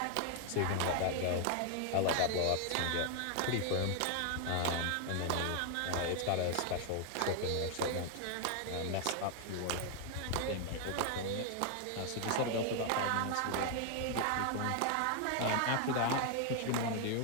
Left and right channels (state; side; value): different; both; correlation 0.00